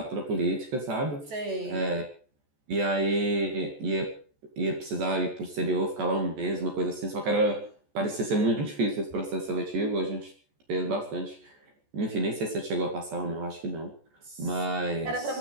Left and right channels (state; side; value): late; left; 14 ms